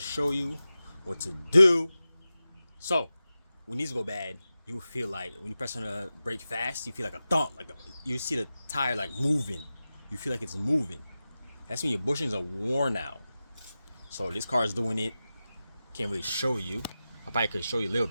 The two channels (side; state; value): both; inverted; correlation -0.94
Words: show you what to do. So when these go bad, you will feel like when you press on the brake fast, you feel like a thump, you see the tire like moving. You feel like it's moving. That's when your bushings are worn out. So this car is doing it. Can't really show you. I probably could show you a little